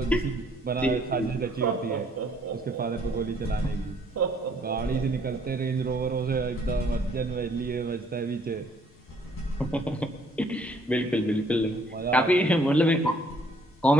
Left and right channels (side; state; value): both; normal; correlation 0.62